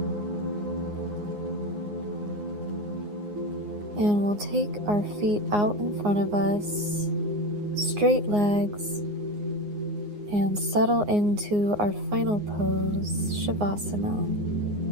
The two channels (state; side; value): late; left; 9.6 ms